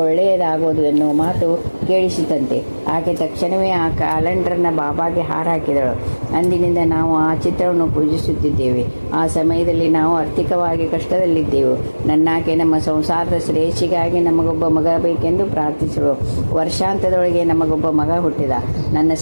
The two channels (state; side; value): inverted; both; correlation -1.00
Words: ಒಳ್ಳೆಯದಾಗುವುದು ಎನ್ನುವ ಮಾತು ಕೇಳಿಸಿತಂತೆ. ಆಕೆ ತಕ್ಷಣವೇ ಆ ಕ್ಯಾಲೆಂಡರ್ನ ಬಾಬಾಗೆ ಹಾರ ಹಾಕಿದಳು. ಅಂದಿನಿಂದ ನಾವು ಆ ಚಿತ್ರವನ್ನು ಪೂಜಿಸುತ್ತಿದ್ದೇವೆ. ಆ ಸಮಯದಲ್ಲಿ ನಾವು ಆರ್ಥಿಕವಾಗಿ ಕಷ್ಟದಲ್ಲಿದ್ದೆವು. ನನ್ನಾಕೆ ನಮ್ಮ ಸಂಸಾರದ ಶ್ರೇಯಸ್ಸಿಗಾಗಿ ನಮಗೊಬ್ಬ ಮಗ ಬೇಕೆಂದು ಪ್ರಾರ್ಥಿಸಲು ವರ್ಷಾಂತದೊಳಗೆ ನಮಗೊಬ್ಬ ಮಗ ಹುಟ್ಟಿದ. ನನ್ನ